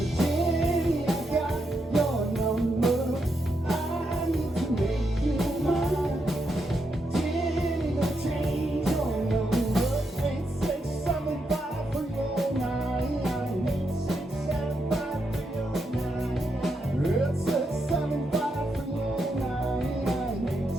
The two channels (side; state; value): both; normal; correlation 0.82